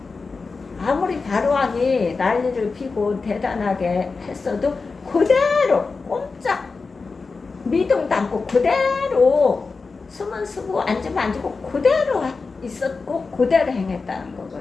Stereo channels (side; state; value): right; quieter; 4.3 dB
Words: 아무리 바로왕이 난리를 피고 대단하게 했어도 그대로 꼼짝 미동도 않고 그대로 숨은 쓰고 앉으면 앉고 그대로 있었고 그대로 행했다는